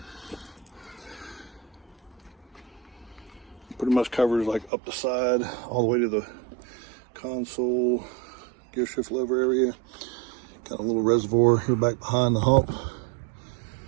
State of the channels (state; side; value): drops out; left; at 4.7 s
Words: Pretty much covers like up the side, all the way to the console, gear shift lever area. Got a little reservoir here back behind the hump.